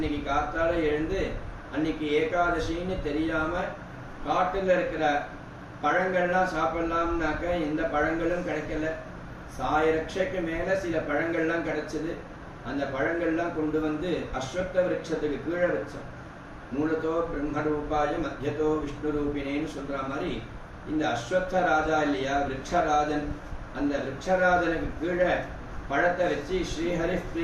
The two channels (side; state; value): both; identical; correlation 1.00